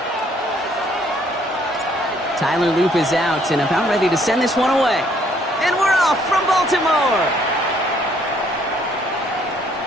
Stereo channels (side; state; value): both; normal; correlation 0.65